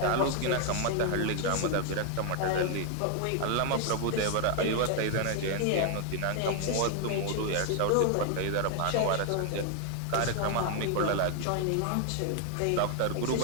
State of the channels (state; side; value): different; both; correlation 0.00